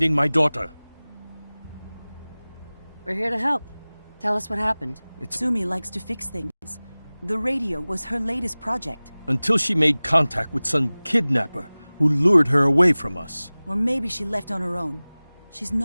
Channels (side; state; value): both; inverted; correlation -0.99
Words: my daughter. We're here to help. Tell us what happened. Sumi likes to fix things. The radio was her latest project. Until she made contact with some kidnapper who lured her away from us. Or maybe she left on her own. She's